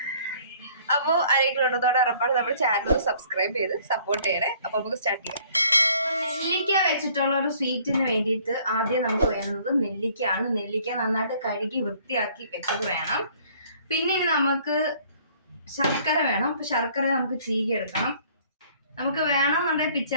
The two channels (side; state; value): both; inverted; correlation -0.58